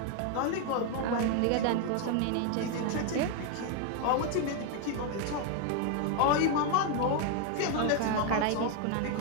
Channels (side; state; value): both; different; correlation 0.01